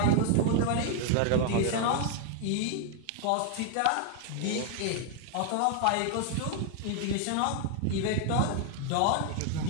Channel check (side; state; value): both; different; correlation 0.00